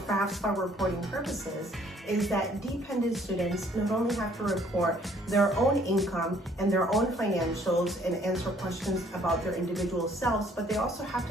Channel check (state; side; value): normal; both; correlation 0.61